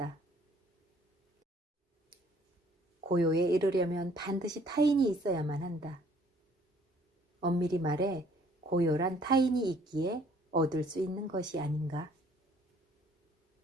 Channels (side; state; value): both; normal; correlation 0.59